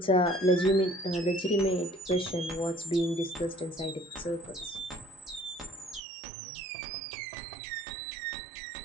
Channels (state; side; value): drops out; left; at 6.0 s